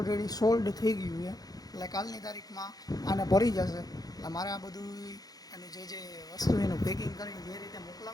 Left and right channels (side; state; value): right; late; 0.18 ms